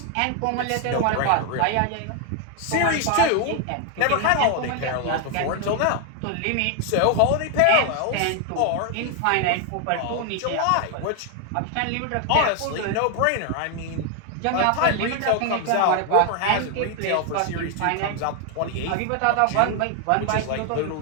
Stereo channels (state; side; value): different; both; correlation 0.01